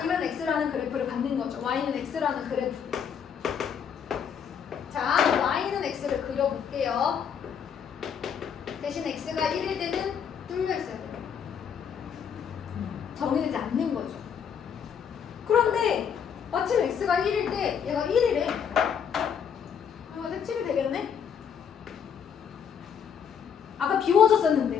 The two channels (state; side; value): quieter; right; 7.6 dB